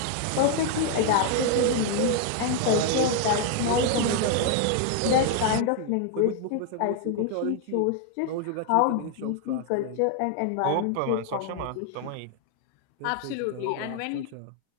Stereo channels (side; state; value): both; different; correlation 0.00